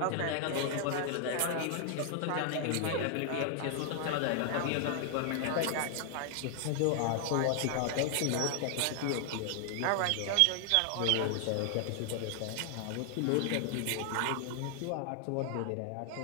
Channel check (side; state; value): both; different; correlation 0.00